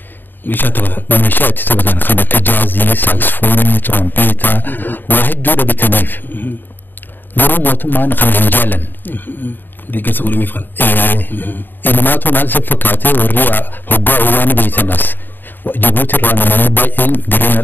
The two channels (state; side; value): late; right; 0.093 ms